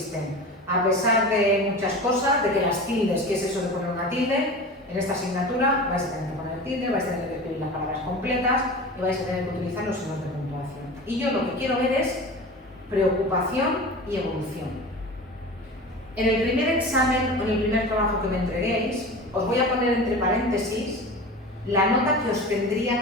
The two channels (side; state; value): both; normal; correlation 0.33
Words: a pesar de muchas cosas, de que las tildes, ¿qué es eso de poner una tilde? En esta asignatura vais a tener que poner tilde, vais a tener que escribir las palabras completas y vais a tener que utilizar los signos de puntuación. Y yo lo que quiero ver es preocupación y evolución. En el primer examen o en el primer trabajo que me entreguéis, os voy a poner entre paréntesis la nota que os